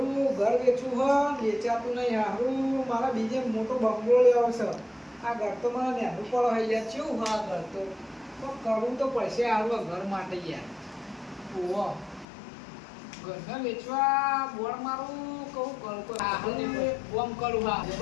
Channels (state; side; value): drops out; right; at 12.2 s